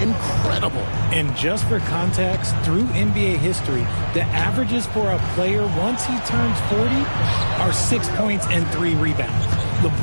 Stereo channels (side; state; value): both; inverted; correlation -1.00